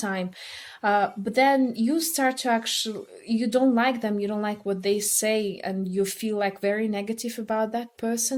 time, but then you start to actually, you don't like them, you don't like what they say, and you feel like very negative about that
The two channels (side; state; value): both; identical; correlation 1.00